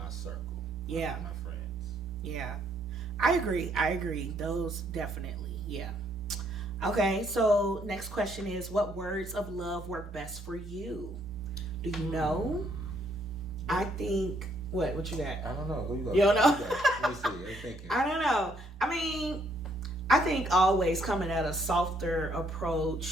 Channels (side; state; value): both; normal; correlation 0.69